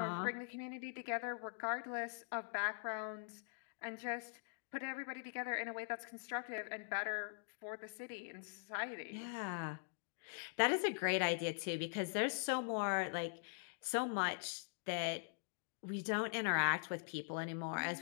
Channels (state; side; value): silent; right; digital silence